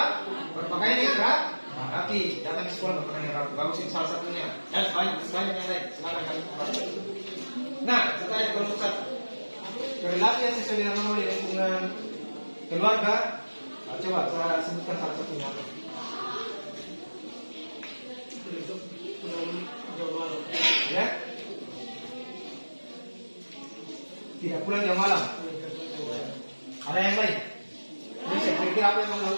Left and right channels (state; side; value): inverted; both; correlation -1.00